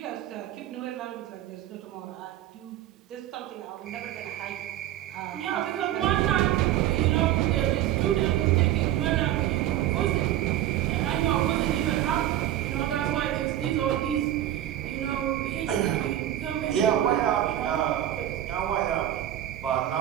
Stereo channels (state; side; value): quieter; left; 12.8 dB